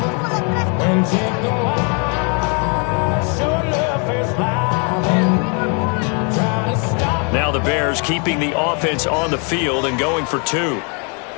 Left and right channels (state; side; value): quieter; right; 36.8 dB